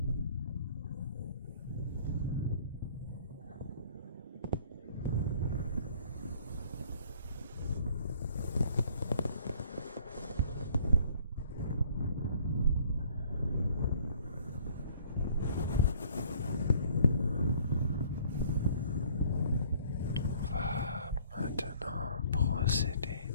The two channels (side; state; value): both; inverted; correlation -0.55